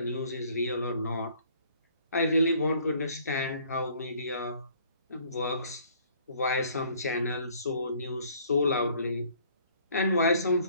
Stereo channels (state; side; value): inverted; both; correlation -0.59